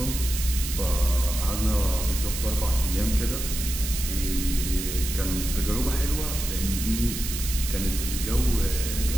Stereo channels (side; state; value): right; noise; hiss, 6 dB below the sound